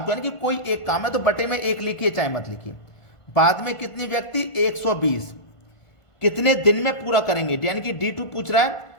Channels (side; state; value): right; late; 1.5 ms